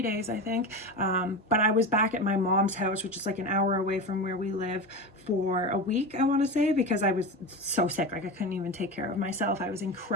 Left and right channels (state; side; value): normal; both; correlation 0.24